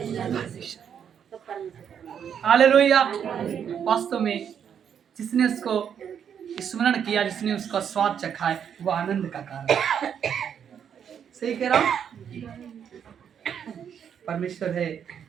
हालेलुया। वास्तव में जिसने उसको स्मरण किया, जिसने उसका स्वाद चखा है, वो आनंद का कारण है। सही कह रहा हूं? परमेश्वर है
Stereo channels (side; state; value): left; quieter; 8.2 dB